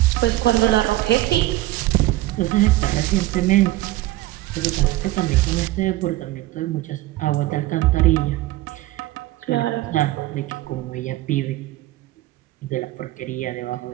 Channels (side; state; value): left; quieter; 17.0 dB